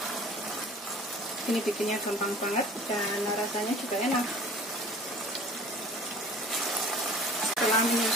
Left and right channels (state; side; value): normal; both; correlation 0.46